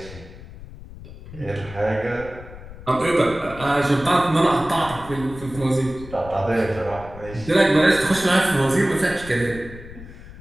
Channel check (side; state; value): left; noise; rumble, 15 dB below the sound